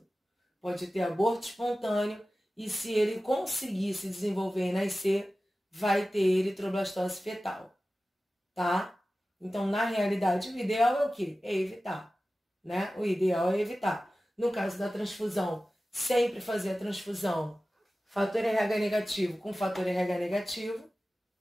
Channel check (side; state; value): both; normal; correlation 0.96